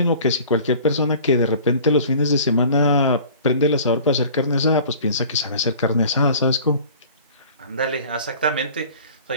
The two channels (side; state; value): both; inverted; correlation -0.46